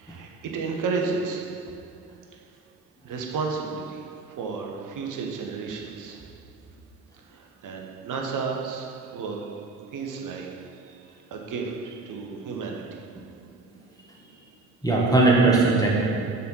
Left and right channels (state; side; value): quieter; left; 3.1 dB